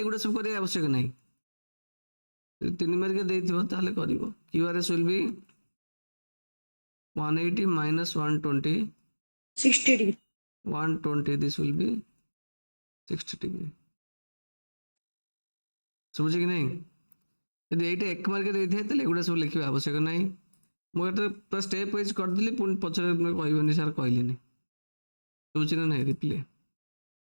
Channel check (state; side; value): inverted; both; correlation -1.00